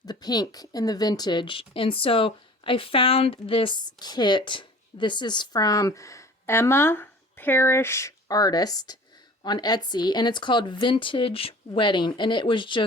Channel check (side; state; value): both; normal; correlation 0.45